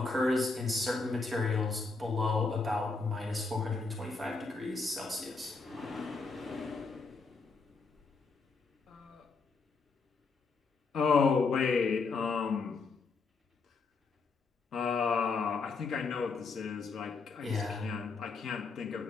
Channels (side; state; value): right; quieter; 4.2 dB